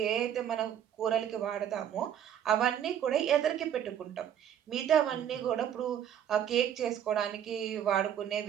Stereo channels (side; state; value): left; quieter; 9.7 dB